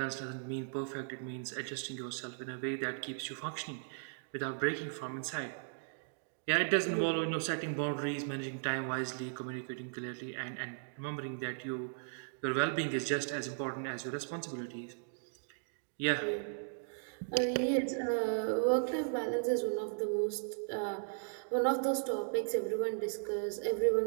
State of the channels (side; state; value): left; silent; digital silence